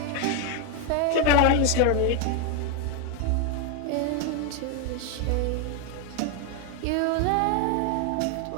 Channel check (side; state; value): both; different; correlation 0.01